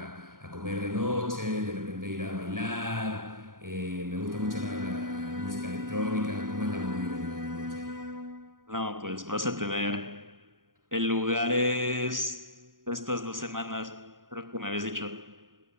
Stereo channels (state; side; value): late; left; 0.90 ms